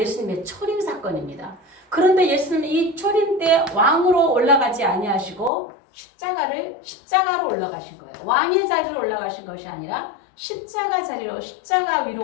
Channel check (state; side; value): drops out; right; at 5.5 s